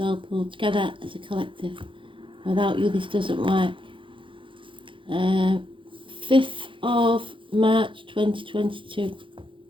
pool, together as a collective. Without you this doesn't work. 5th of March 2022.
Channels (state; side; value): late; left; 0.25 ms